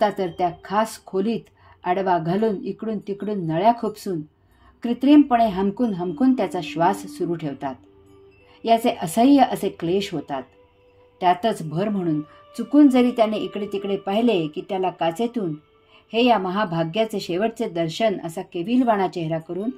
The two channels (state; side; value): identical; both; correlation 1.00